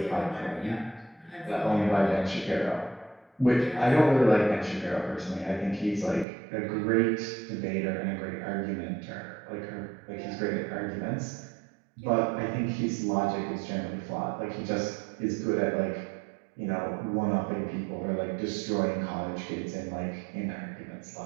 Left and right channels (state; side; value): drops out; left; at 6.2 s